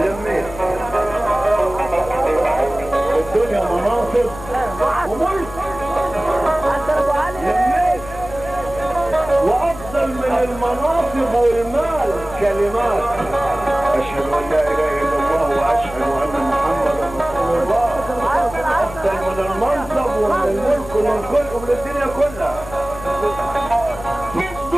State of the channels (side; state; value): left; noise; hum, 14 dB below the sound